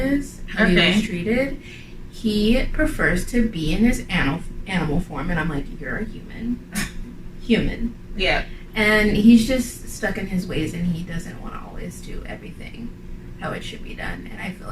is, how he was treated, he prefers to be in his animal form, and I'm like, you're a human. Yeah. And he's just stuck in his ways, and he doesn't want to always do everything how it should be done, and I feel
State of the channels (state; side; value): identical; both; correlation 1.00